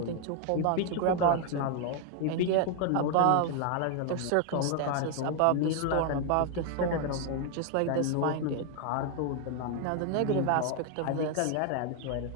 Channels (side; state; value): both; different; correlation 0.00